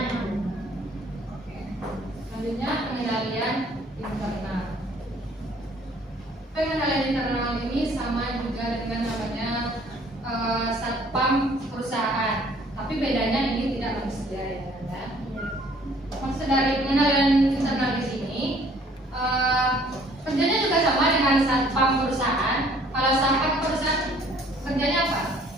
Oke. Selanjutnya pengendalian internal. Pengendalian internal ini sama juga dengan namanya satpam perusahaan, tapi bedanya ini tidak manusia ya. Maksud dari pengendalian internal di sini kerjanya juga sama dengan satpam perusahaan. Kalau satpam perusahaan kerjanya apa?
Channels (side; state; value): both; normal; correlation 0.58